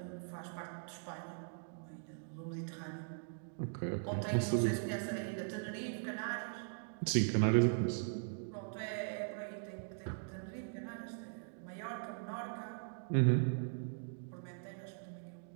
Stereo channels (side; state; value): left; silent; digital silence